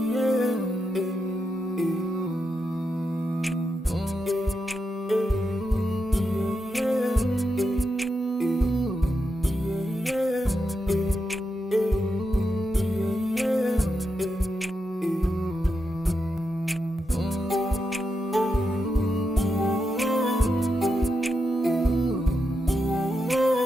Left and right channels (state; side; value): normal; both; correlation 0.86